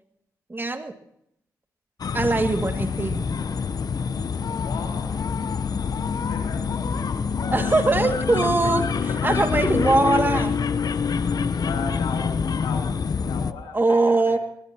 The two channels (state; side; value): normal; both; correlation 0.78